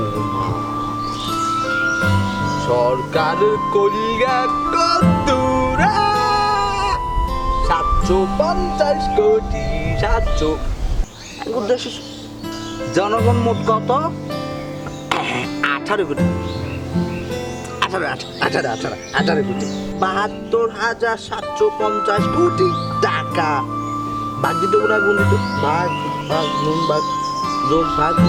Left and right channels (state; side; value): identical; both; correlation 1.00